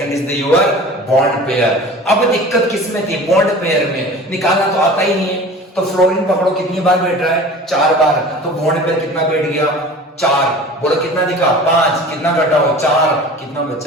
is the your bond pair. अब दिक्कत किस में थी? बॉन्ड पेयर में। निकालना तो आता ही नहीं है। तो फ्लोरीन पकड़ो, कितनी बार बैठ रहा है? 4 बार। तो बॉन्ड पेयर कितना बैठ गया? 4। बोलो कितना दिखा? 5। कितना घटाओ? 4। कितना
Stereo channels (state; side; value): normal; both; correlation 0.40